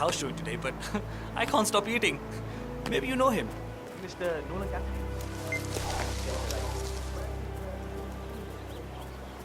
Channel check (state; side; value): identical; both; correlation 1.00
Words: showing today, but I can't stop eating. Maybe you know him. Mr. Nolan Cassidy.